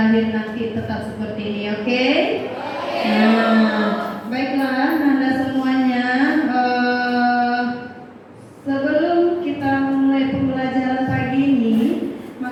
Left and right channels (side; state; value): both; identical; correlation 1.00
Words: nanti tetap seperti ini, oke? Nah, baiklah Ananda semuanya. Sebelum kita mulai pembelajaran pagi ini,